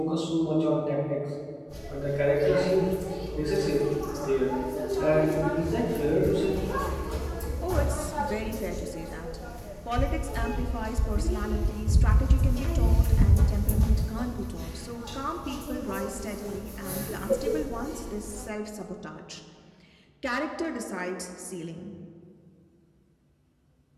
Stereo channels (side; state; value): both; identical; correlation 1.00